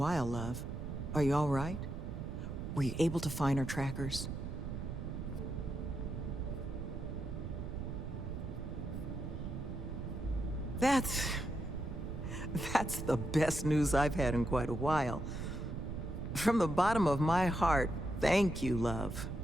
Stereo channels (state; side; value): noise; right; rumble, 6 dB below the sound